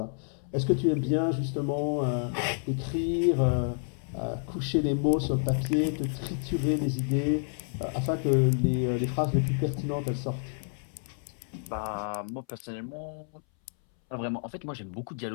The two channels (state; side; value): silent; right; 58 dB below the other